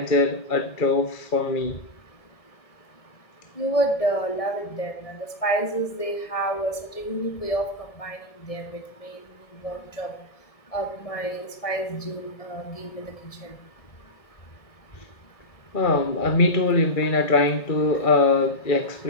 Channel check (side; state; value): right; late; 1.7 ms